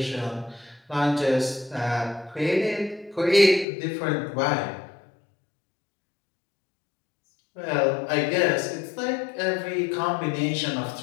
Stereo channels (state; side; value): drops out; right; at 3.7 s